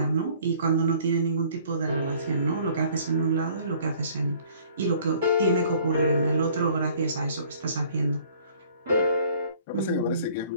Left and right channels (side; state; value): both; inverted; correlation -0.55